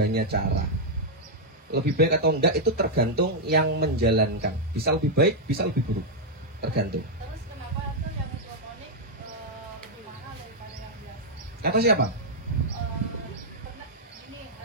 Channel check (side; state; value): both; normal; correlation -0.03